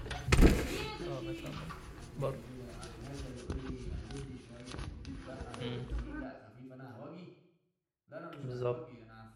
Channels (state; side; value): identical; both; correlation 1.00